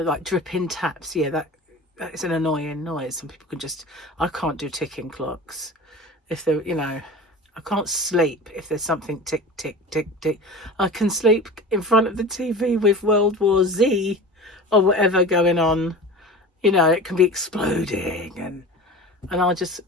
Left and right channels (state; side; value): normal; both; correlation 0.35